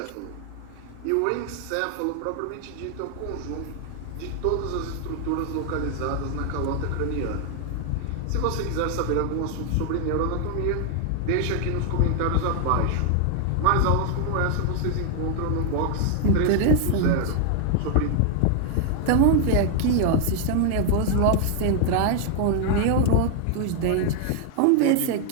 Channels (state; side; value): different; both; correlation 0.00